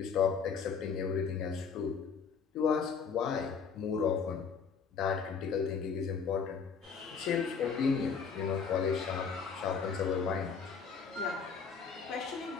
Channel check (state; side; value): quieter; right; 6.0 dB